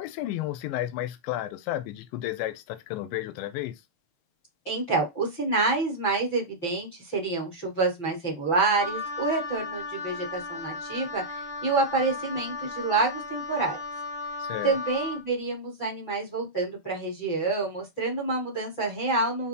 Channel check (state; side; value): late; right; 5.9 ms